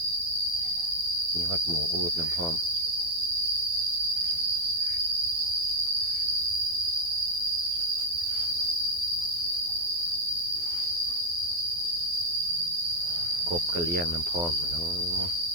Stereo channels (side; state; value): left; late; 12 ms